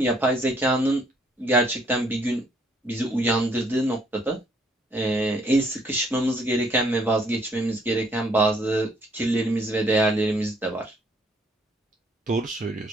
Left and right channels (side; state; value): both; normal; correlation 0.66